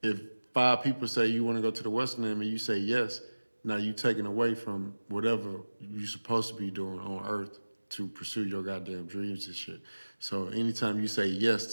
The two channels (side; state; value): both; inverted; correlation -1.00